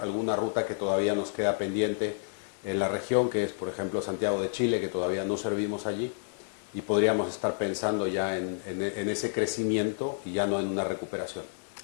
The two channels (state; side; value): silent; right; digital silence